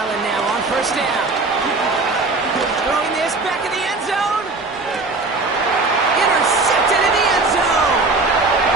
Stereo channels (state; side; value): quieter; left; 3.5 dB